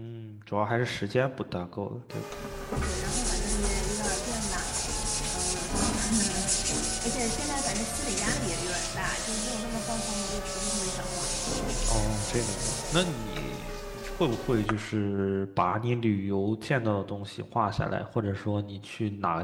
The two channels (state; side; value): identical; both; correlation 1.00